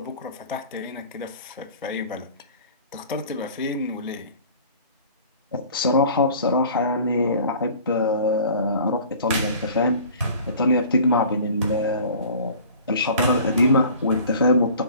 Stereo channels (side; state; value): both; inverted; correlation -0.46